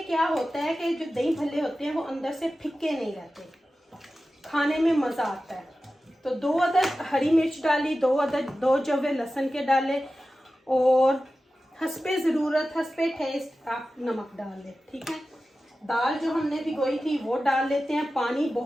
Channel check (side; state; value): both; normal; correlation 0.94